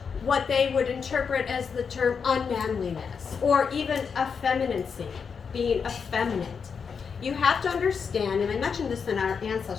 what they would interpret as the term unmanliness or even effeminacy, being effeminate. You have to understand, and I mentioned this in our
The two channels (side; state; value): right; quieter; 6.1 dB